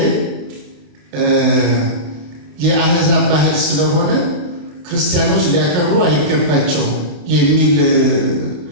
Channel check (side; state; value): left; late; 28 ms